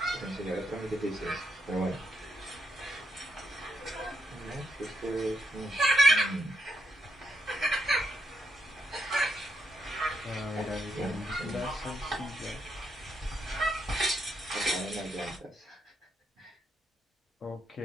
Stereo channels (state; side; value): normal; both; correlation 0.80